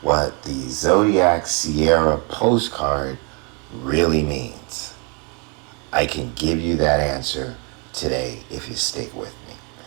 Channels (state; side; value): quieter; left; 31.9 dB